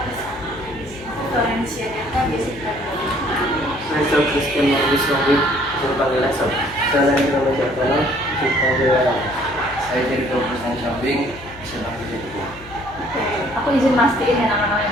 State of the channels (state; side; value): noise; left; hum, 19 dB below the sound